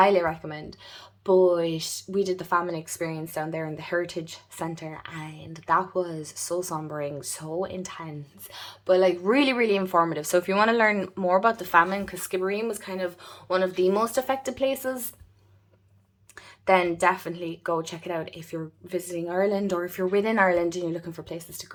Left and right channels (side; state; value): both; identical; correlation 1.00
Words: recommend. But we did the famine experience down there in the Heritage Centre, and that was so sombering, so intense, but like really, really informative. So if you want to learn more about the famine, because Skibbereen was kind of one of the most affected places, then definitely go check it out if you're visiting Ireland, or if you're within Ireland and you're looking for places to